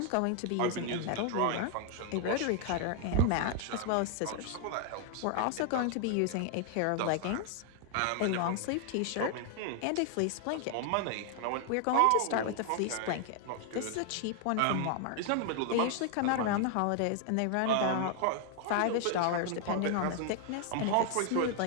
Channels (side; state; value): both; different; correlation 0.00